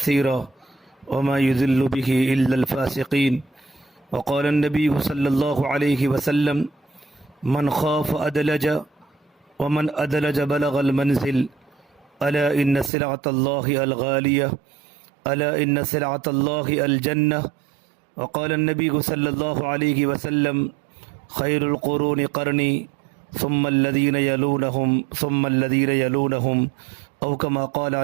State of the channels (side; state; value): left; drops out; at 12.9 s